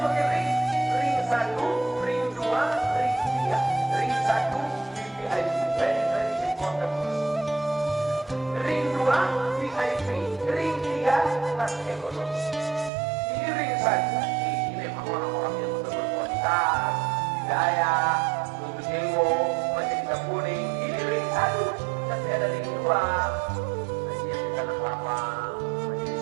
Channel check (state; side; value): drops out; left; at 12.9 s